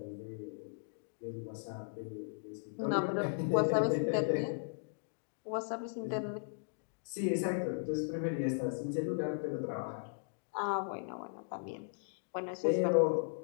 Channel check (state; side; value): silent; right; digital silence